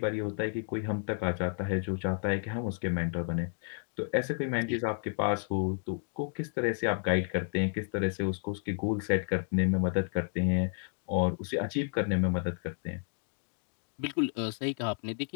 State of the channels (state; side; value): silent; right; 57 dB below the other